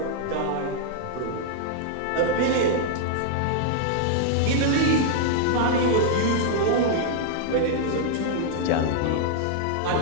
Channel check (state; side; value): different; both; correlation -0.01